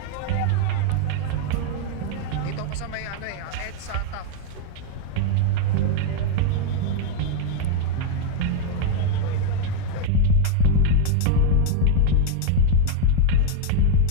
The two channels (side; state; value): both; different; correlation 0.00